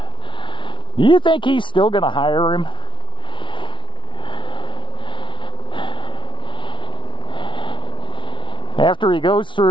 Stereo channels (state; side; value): late; right; 0.24 ms